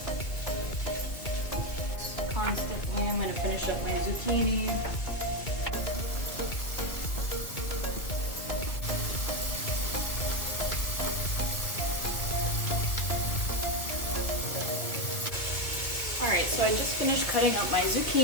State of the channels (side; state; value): right; late; 2.2 ms